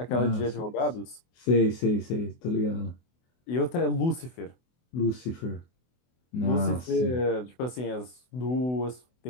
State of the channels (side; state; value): right; late; 24 ms